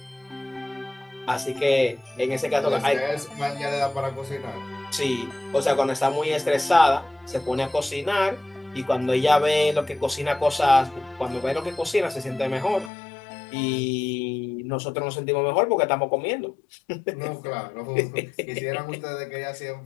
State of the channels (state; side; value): drops out; right; at 12.9 s